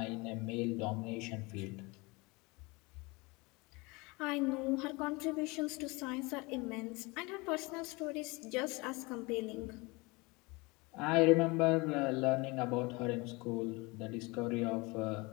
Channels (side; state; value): right; quieter; 25.6 dB